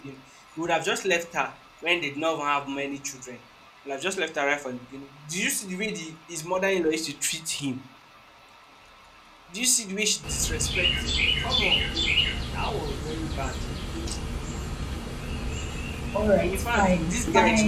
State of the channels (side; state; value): both; identical; correlation 1.00